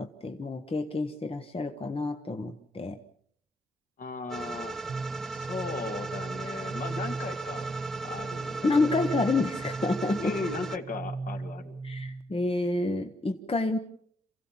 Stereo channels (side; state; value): both; normal; correlation 0.76